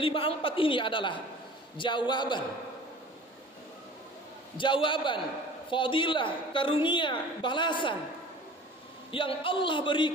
ini adalah jawaban fadilah, karunia, balasan yang Allah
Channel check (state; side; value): normal; both; correlation 0.44